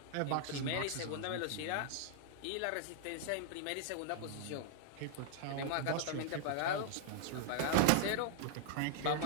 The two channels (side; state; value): both; different; correlation -0.01